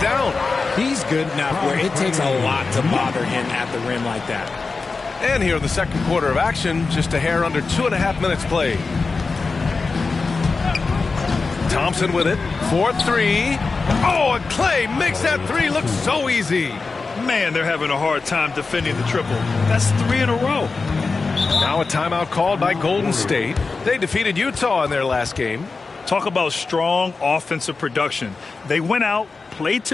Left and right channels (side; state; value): right; quieter; 4.2 dB